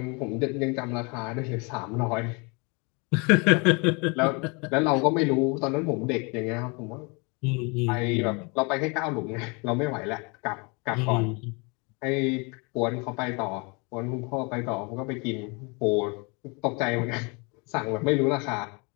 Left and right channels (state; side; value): quieter; right; 30.7 dB